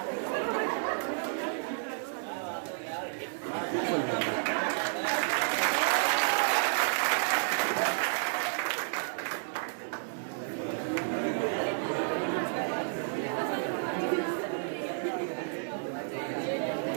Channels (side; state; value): left; silent; digital silence